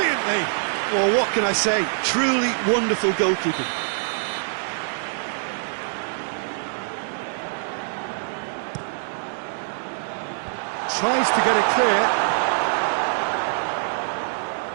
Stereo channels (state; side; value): silent; left; digital silence